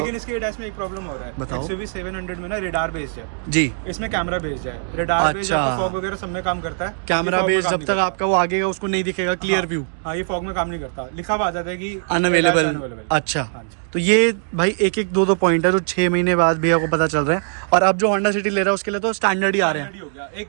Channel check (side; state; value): left; silent; 65 dB below the other